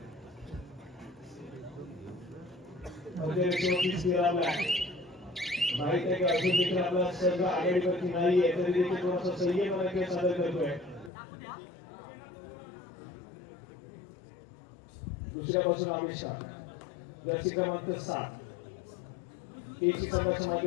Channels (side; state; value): right; drops out; at 11.1 s